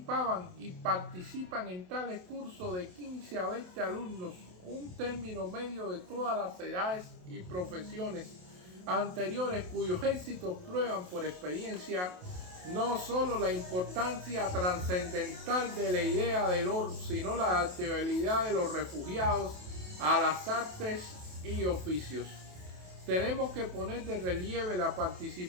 y participan en tales cursos de 15 a 20 alumnos, un término medio de todas las edades y profesiones anteriores, cuyos éxitos prueban por experiencia no solo la importancia trascendental de la idea del orden, sino la adaptabilidad de los refugiados a las artes y oficios. Tenemos que poner de relieve la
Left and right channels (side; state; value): left; late; 28 ms